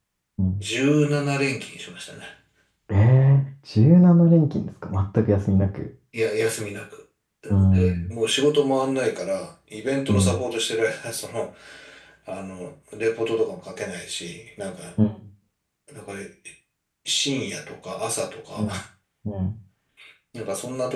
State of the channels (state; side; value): identical; both; correlation 1.00